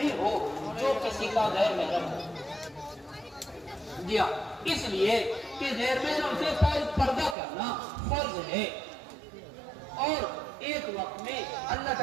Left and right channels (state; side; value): drops out; left; at 7.4 s